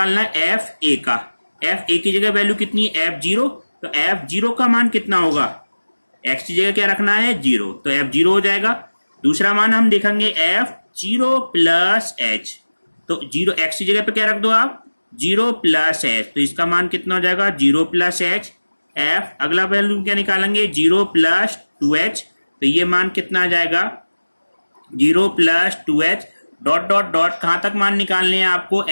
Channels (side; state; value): both; inverted; correlation -1.00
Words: है एफ ए का, एफ ए की जगह वैल्यू कितनी है F0, तो F0 का मान कितना होगा, एक्स की जगह क्या रखना है 0, तो F0 हो जाएगा। दूसरा मान हम देखेंगे F0 प्लस एच, तो 0 एक्स की जगह पे क्या रख दो आप 0 प्लस एच, तो इसका मान कितना हो जाएगा 0 प्लस एच। एफ अगला वैल्यू क्या निकालेंगे 0 प्लस 2h, तो ये मान कितना आ जाएगा 0 plus 2h dot dot dot कहां तक मान निकालने हैं आपको